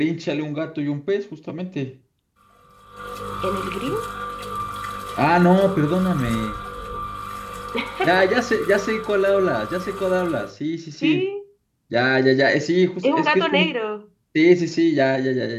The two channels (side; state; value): both; identical; correlation 1.00